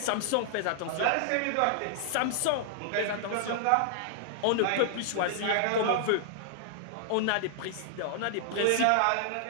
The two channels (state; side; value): different; both; correlation -0.01